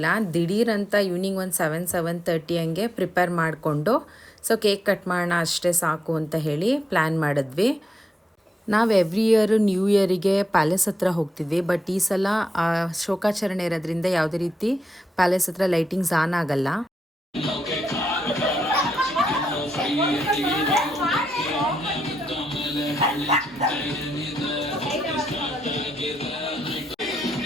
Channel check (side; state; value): both; normal; correlation 0.85